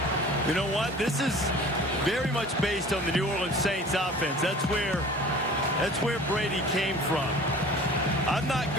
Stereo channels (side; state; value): both; normal; correlation 0.44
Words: You know what? This is very much based on the New Orleans Saints offense. That's where Brady came from. I'm not